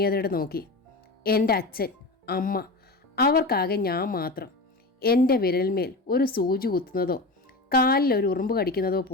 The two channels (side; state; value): right; quieter; 3.1 dB